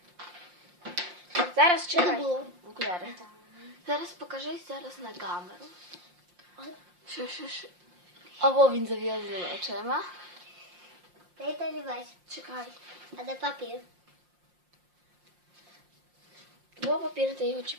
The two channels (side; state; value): left; late; 5.7 ms